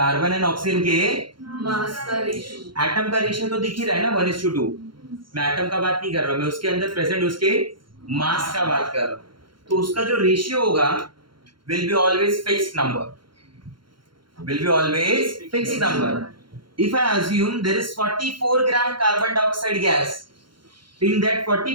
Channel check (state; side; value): late; left; 0.72 ms